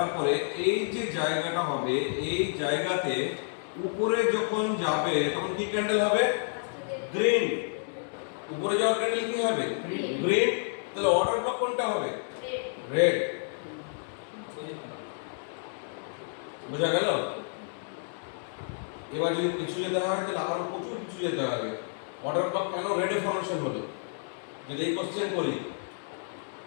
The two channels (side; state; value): right; silent; digital silence